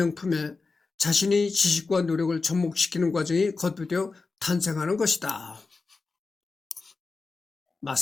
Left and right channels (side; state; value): right; quieter; 4.1 dB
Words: 자신의 지식과 노력을 접목시키는 과정이 거듭되어 탄생하는 것이다.